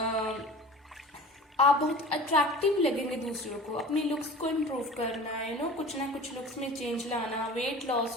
आप बहुत अट्रैक्टिव लगेंगे दूसरों को, अपनी लुक्स को इम्प्रूव करना, कुछ ना कुछ लुक्स में चेंज लाना, वेट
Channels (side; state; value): both; normal; correlation 0.39